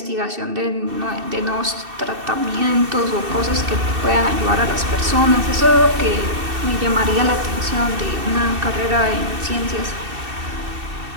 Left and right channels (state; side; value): late; left; 2.7 ms